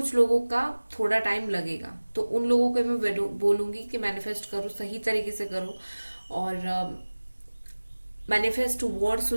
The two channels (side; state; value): both; inverted; correlation -1.00